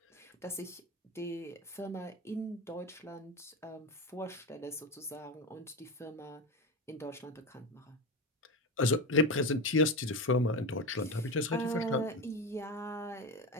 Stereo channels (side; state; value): both; normal; correlation 0.20